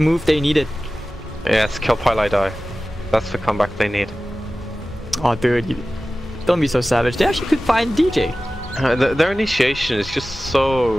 they needed. Yes, kill Pilot Die. That's the comeback they need. Oh dude, don't be so savage. They actually could find DJ. Their initiation is just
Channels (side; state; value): both; normal; correlation 0.96